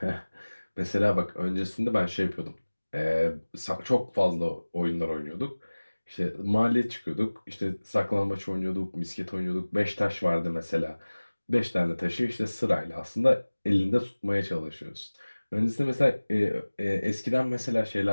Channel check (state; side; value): inverted; both; correlation -1.00